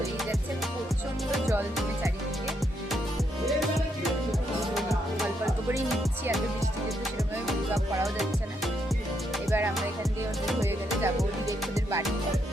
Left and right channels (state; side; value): normal; both; correlation 0.77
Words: যাচ্ছে, প্রচন্ড জল জমে চারিদিকে। অল্প অল্প করেই নিচ্ছি, এত বৃষ্টিতে তো সেরকমভাবে পিক আপ করাও যাচ্ছে না। এবার আমরা এখান দিয়ে ওদের হয়ে গেলে যাবো ওদের ওদের বাড়ি।